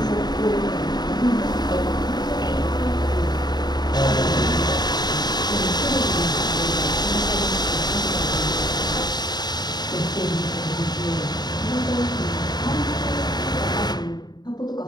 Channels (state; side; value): late; right; 0.20 ms